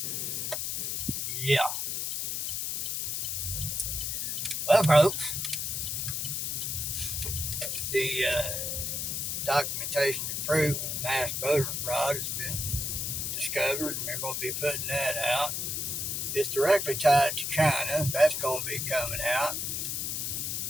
Yeah. Well, folks, the documentation and proof of mass voter fraud has been discovered, and they're going to be putting that out. It's directly tied to China. That's going to be coming out.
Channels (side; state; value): left; noise; hiss, 1 dB below the sound